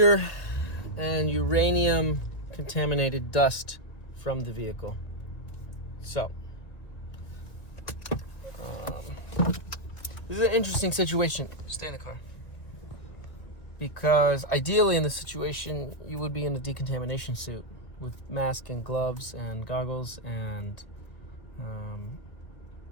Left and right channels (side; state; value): right; late; 2.0 ms